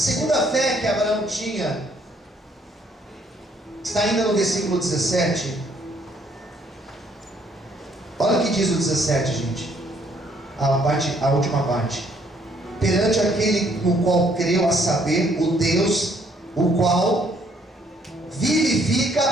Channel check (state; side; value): normal; both; correlation 0.66